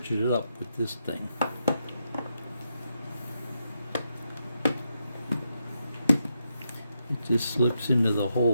it up with this thing. It just slips into the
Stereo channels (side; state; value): both; inverted; correlation -0.83